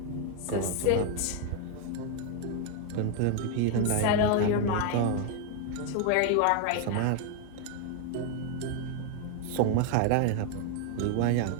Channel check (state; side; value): different; both; correlation 0.01